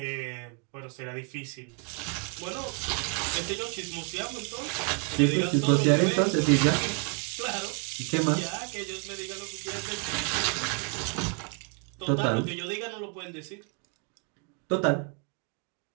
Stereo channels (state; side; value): quieter; left; 36.7 dB